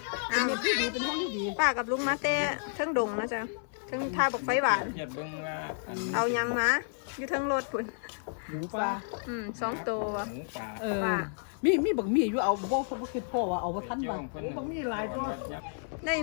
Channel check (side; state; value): right; silent; digital silence